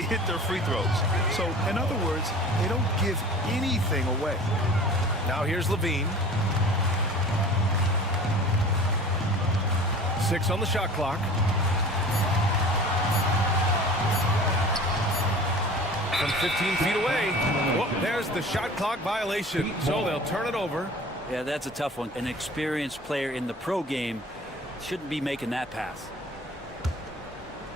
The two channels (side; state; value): both; normal; correlation 0.41